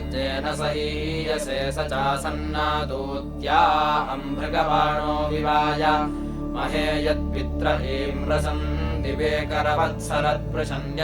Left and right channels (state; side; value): identical; both; correlation 1.00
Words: सहीयसे स चासन्नादूत्या अम्भृगबाणो विवाय महे यत्पित्र इम्रसन् दिवे